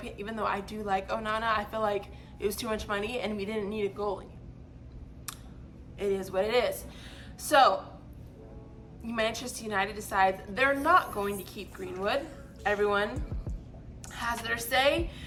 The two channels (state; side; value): identical; both; correlation 1.00